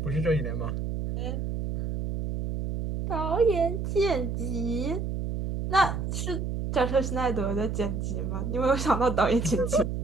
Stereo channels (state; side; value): noise; right; hum, 3 dB below the sound